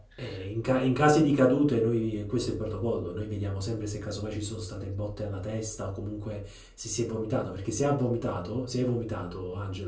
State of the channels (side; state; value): both; identical; correlation 1.00